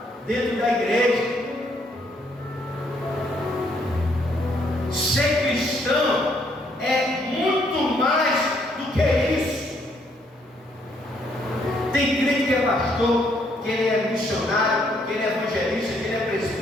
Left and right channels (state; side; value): normal; both; correlation 0.70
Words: dentro da igreja. Ser cristão é muito mais do que isso. Tem crente que é pastor, que ele é missionário, que ele é evangelista, que ele é